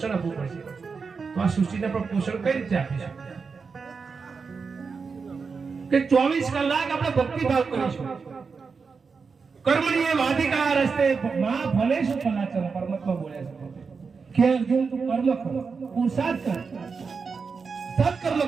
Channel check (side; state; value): left; quieter; 5.1 dB